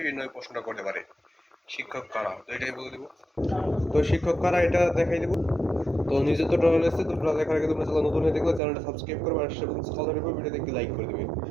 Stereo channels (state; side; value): drops out; left; at 8.6 s